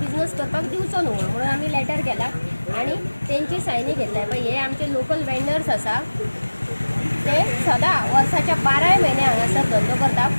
करपाक दिवचो न्हू म्हणून आमी लेटर केला आणि तेंची सायनी घेतल्या पळय हे आमचे लोकल वेंडर्स आसा ते सदां वर्साच्या 12 म्हयने हांगासर धंदो करता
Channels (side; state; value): both; inverted; correlation -1.00